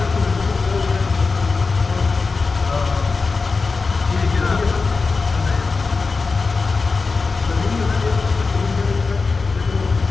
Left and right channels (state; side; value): quieter; right; 4.3 dB